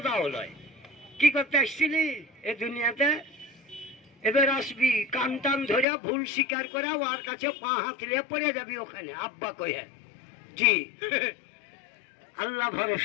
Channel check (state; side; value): drops out; right; at 5.9 s